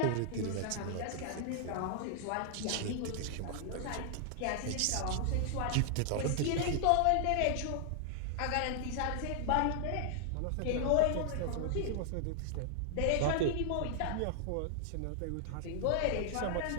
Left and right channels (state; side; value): different; both; correlation 0.00